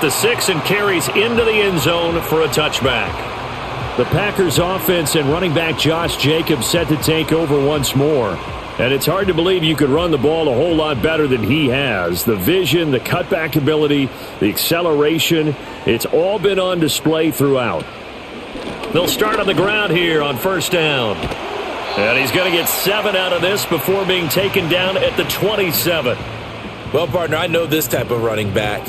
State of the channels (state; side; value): identical; both; correlation 1.00